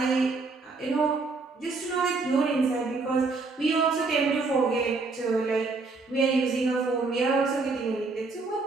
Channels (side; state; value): left; quieter; 3.9 dB